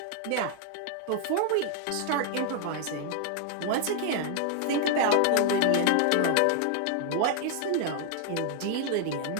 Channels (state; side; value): different; both; correlation 0.00